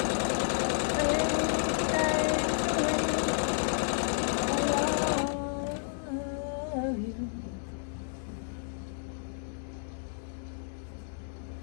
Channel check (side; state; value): right; silent; digital silence